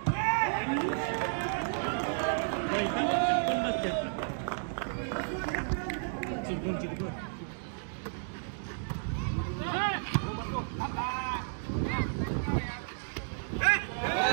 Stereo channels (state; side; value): silent; left; digital silence